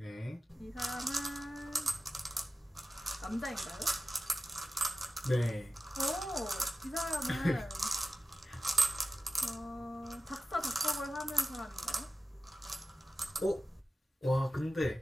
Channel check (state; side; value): normal; both; correlation 0.92